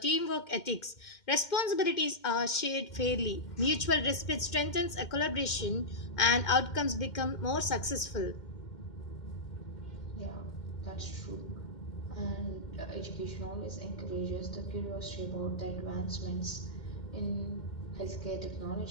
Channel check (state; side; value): late; right; 2.1 ms